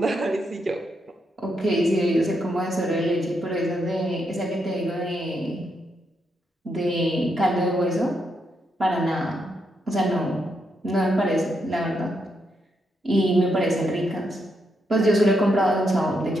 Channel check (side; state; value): both; normal; correlation 0.80